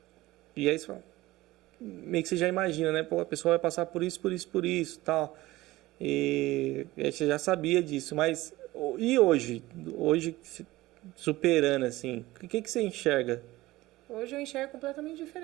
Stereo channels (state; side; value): quieter; left; 18.2 dB